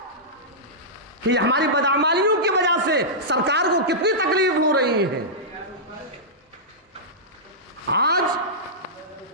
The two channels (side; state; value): both; normal; correlation -0.14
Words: کہ ہماری بدعمالیوں کی وجہ سے سرکار کو کتنی تکلیف ہو رہی ہے؟ آج